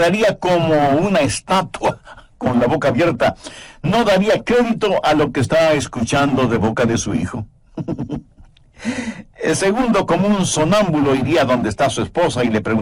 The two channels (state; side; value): identical; both; correlation 1.00